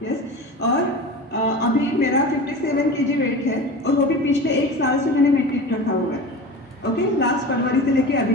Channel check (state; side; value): normal; both; correlation 0.31